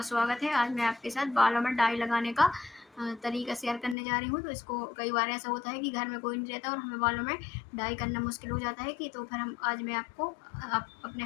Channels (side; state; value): right; drops out; at 4.0 s